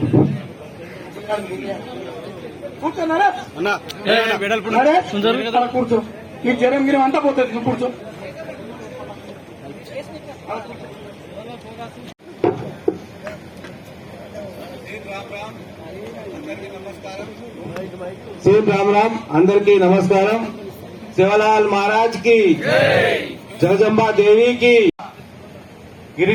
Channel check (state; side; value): identical; both; correlation 1.00